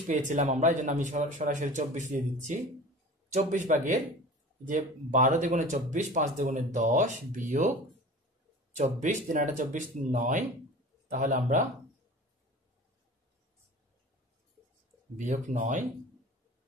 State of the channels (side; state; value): both; normal; correlation 0.38